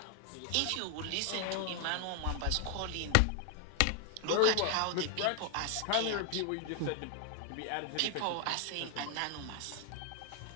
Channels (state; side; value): different; both; correlation 0.00